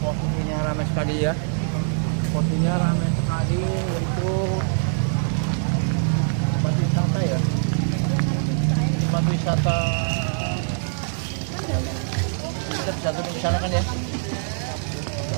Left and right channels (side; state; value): left; silent; 63 dB below the other